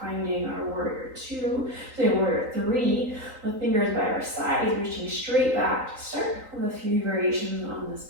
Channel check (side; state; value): left; late; 3.9 ms